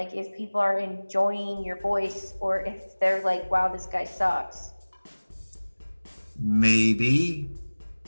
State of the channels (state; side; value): inverted; both; correlation -1.00